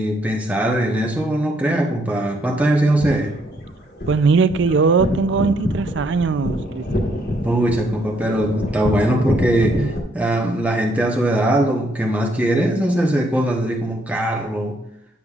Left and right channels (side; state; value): both; normal; correlation 0.70